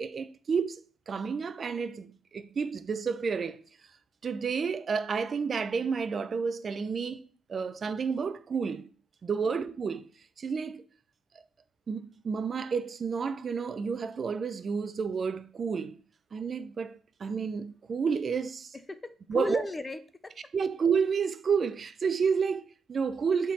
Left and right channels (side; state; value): left; quieter; 5.3 dB